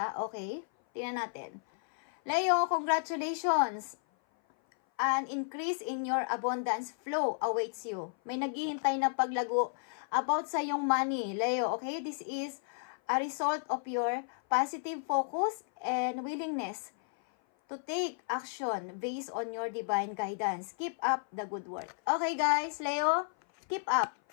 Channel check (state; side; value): silent; right; 56 dB below the other